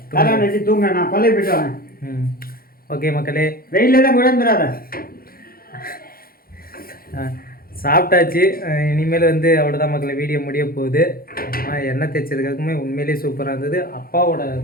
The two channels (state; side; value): late; right; 0.43 ms